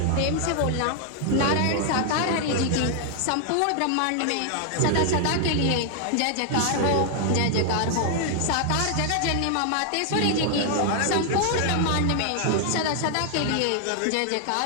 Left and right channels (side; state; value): both; different; correlation 0.00